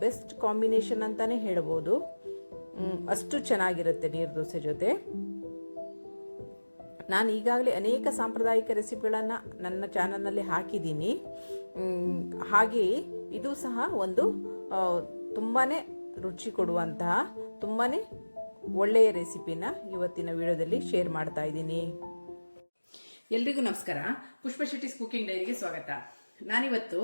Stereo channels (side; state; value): both; inverted; correlation -1.00